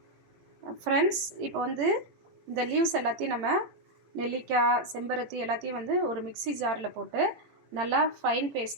இப்போ வந்து இந்த லீவ்ஸ் எல்லாத்தையும் நம்ம நெல்லிக்காய், செம்பருத்தி எல்லாத்தையும் வந்து ஒரு மிக்ஸி ஜாரில் போட்டு நல்லா ஃபைன்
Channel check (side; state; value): left; late; 18 ms